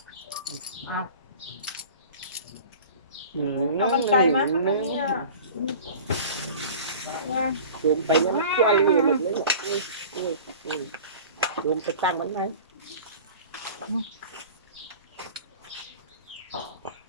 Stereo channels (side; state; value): both; inverted; correlation -0.40